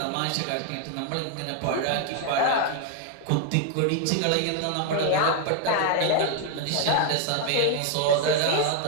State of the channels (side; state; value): both; different; correlation 0.01